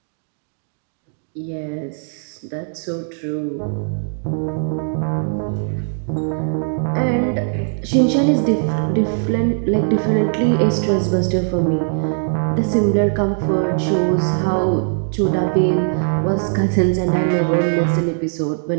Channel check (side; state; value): left; silent; digital silence